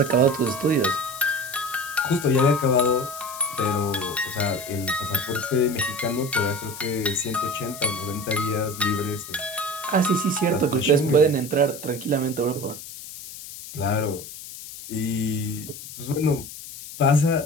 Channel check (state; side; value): noise; left; hiss, 13 dB below the sound